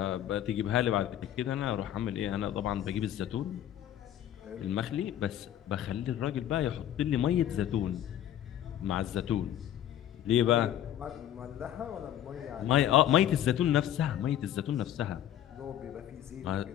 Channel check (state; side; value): quieter; right; 11.3 dB